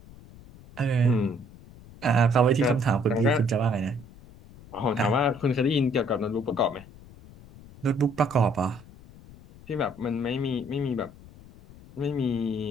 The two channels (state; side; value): noise; left; rumble, 21 dB below the sound